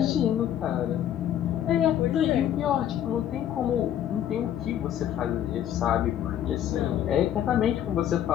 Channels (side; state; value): right; quieter; 10.7 dB